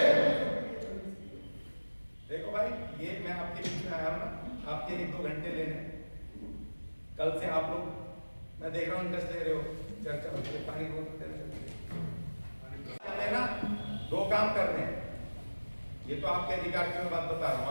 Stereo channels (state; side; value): inverted; both; correlation -1.00